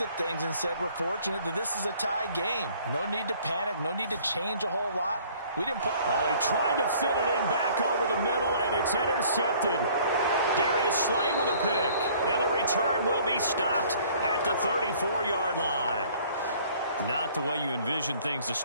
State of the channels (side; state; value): both; inverted; correlation -0.56